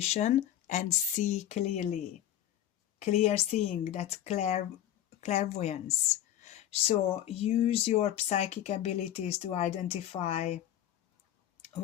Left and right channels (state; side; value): quieter; right; 12.0 dB